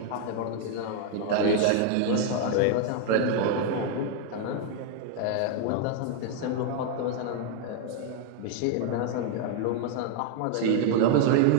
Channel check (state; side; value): different; both; correlation 0.00